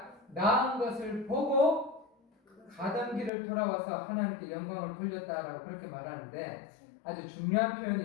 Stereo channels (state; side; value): drops out; right; at 3.3 s